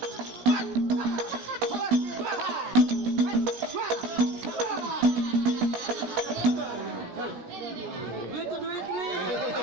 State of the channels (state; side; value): late; left; 17 ms